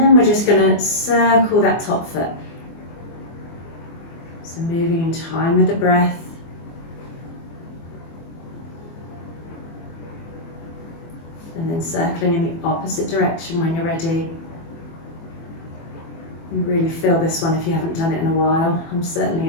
we're just going to circle that top foot. So moving in time with the breath. And then circling in the opposite direction when you're ready. You really feel this one if you haven't done it in a while. I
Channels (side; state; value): right; late; 24 ms